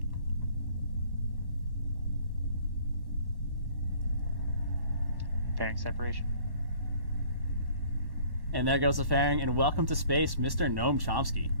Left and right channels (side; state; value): left; late; 1.1 ms